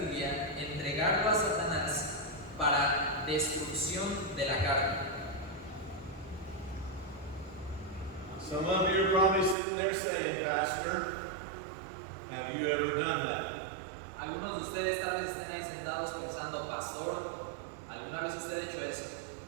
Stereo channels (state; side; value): drops out; left; at 9.6 s